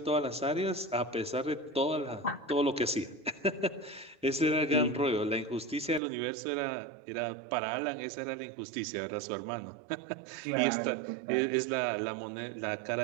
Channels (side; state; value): left; drops out; at 6.0 s